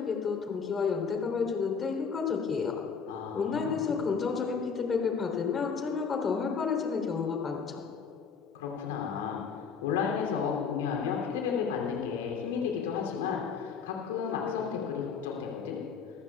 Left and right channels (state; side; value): quieter; right; 5.9 dB